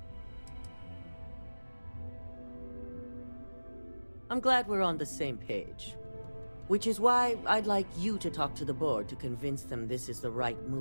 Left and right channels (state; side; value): inverted; both; correlation -1.00